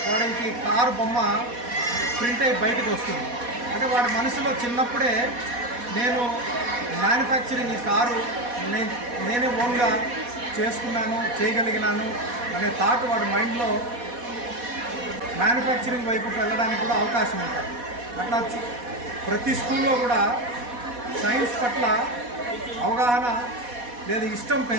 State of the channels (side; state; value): left; late; 4.1 ms